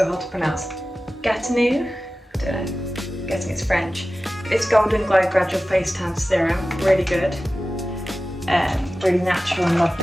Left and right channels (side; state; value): both; normal; correlation 0.95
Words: hard to pronounce? Gatinu? I don't know. I'm guessing it's French. It's Golden Glow Gradual Face Tan Serum. Really good. Really natural and